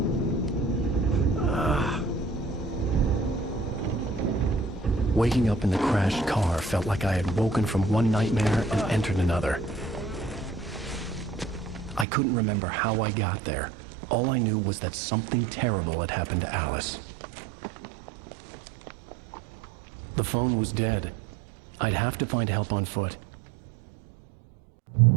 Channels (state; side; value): drops out; left; at 12.1 s